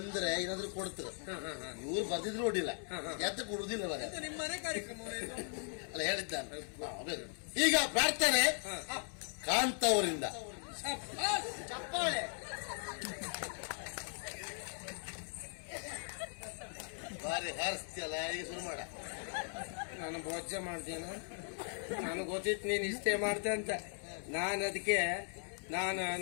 ಏನಾದ್ರು ಕೊಡ್ತಾರೆ. ಇವ್ರು ಬಂದಿದ್ರು ನೋಡಿಲ್ಲ, ಎತ್ತ ಕೊಡುದಿಲ್ಲ ಮರೆ. ನಿಮ್ಮ ಮನೆ ಕಾರ್ಯಕ್ರಮ ಅಲ್ಲ ಹೇಳಿದ್ದಾನೆ. ಈಗ ಪ್ರಾರ್ಥನೆ ಕಾಂತ ಅವರಿಂದ. ಚಪ್ಪಾಳೆ. ಬಾರಿ ಹಾರಿಸ್ತಿಯಲ್ಲ, ಈಗ ಶುರು ಮಾಡ. ನಾನು ಭೋಜ ಮಾಡ್ತೇನೆ, ನನಗೆ ಗೊತ್ತಿತ್ತು ನೀನು ಇಷ್ಟೇ ಮಾಡ್ತೆ ಅಂತ. ನಾನು ಅದಕ್ಕೆ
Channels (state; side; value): silent; right; 52 dB below the other